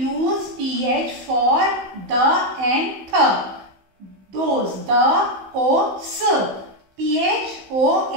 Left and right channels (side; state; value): left; late; 15 ms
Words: use TH for the and th. Those, the, o, s,